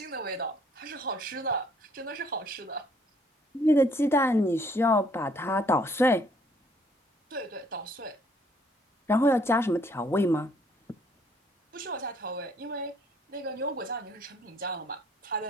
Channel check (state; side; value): normal; both; correlation 0.63